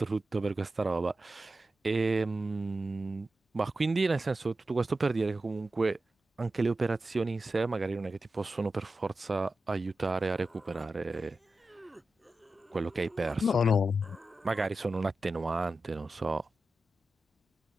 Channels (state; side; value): normal; both; correlation 0.92